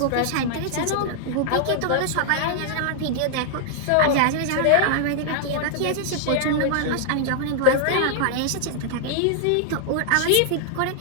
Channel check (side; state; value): both; different; correlation -0.01